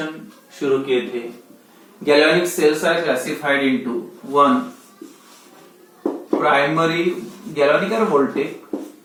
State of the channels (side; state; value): both; identical; correlation 1.00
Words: शुरू किए थे। Galvanic cells are classified into one primary galvanic और वोल्टेक,